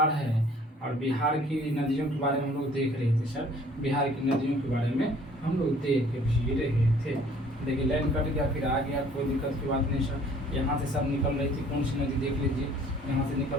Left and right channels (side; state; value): both; normal; correlation 0.55